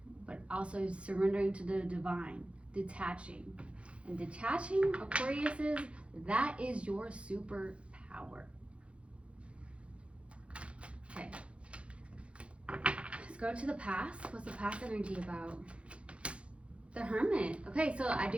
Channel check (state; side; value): late; left; 0.060 ms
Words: But also surrendering to the divine, detaching. And detaching, Aquariuses, that is your superpower. Okay. Let's go to the past. What's the past energy about? The Hermit. Okay, so I